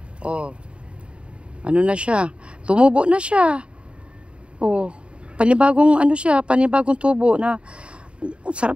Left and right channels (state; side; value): late; left; 0.057 ms